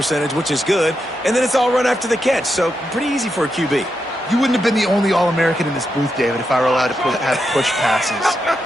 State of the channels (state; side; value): normal; both; correlation 0.85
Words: which is good. And then it's all run after the catch. So pretty easy for a QB. You wouldn't have been the only All-American in this booth, David, if I were allowed to have push passes